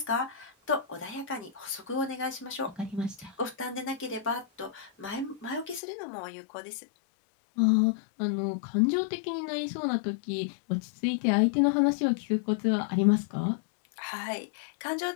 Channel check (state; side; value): drops out; right; at 5.8 s